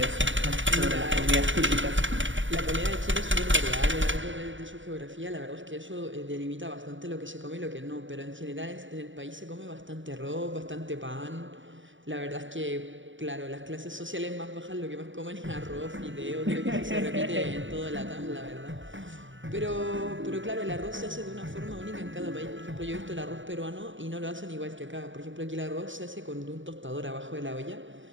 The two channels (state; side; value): late; left; 0.56 ms